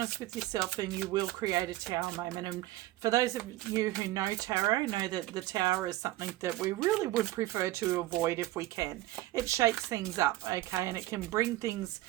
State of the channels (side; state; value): left; quieter; 16.7 dB